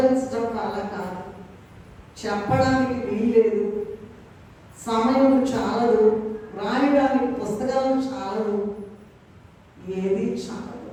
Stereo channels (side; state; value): both; identical; correlation 1.00